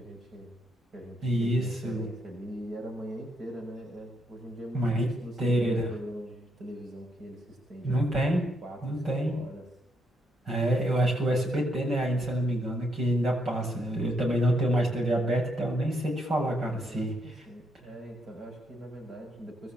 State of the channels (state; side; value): normal; both; correlation 0.76